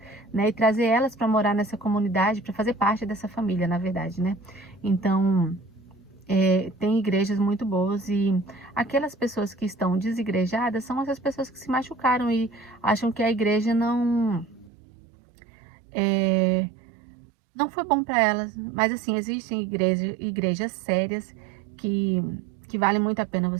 né? E trazer elas para morar nessa comunidade, para fazer parte dessa família, na verdade, né? Então, tem igrejas muito boas e aquelas pessoas que estão desigrejadas são essas pessoas que se machucaram e acham que a igreja não foi bom para elas. Mas assim, existem igrejas sérias que, que vale muito a pena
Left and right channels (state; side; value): drops out; left; at 14.7 s